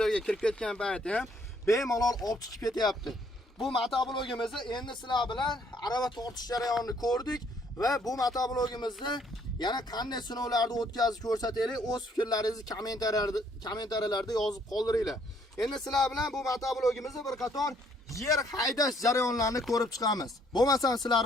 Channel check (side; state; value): both; normal; correlation 0.65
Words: kirib ketgan paytda ham bemalol olib chiqib ketyapti. Bu motoblogimizni endi sizlar bilan arava tortish jarayonini ko'rdik va bu motoblogimizni yana qanday sinovlarni o'tkazib ko'rsataylik, o'z fikrlaringizni kommentariyalarda yozib qoldiringlar. Endi sizlar bilan bu motoblogimizni bir qator yer haydash jarayonlarini ko'rib chiqamiz. Bo'lmasa sizlar